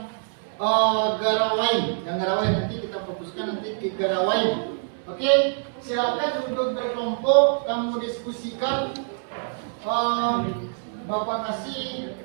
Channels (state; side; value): silent; left; 62 dB below the other